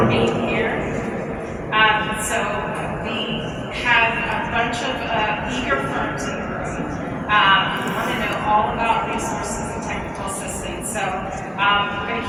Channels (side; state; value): both; identical; correlation 1.00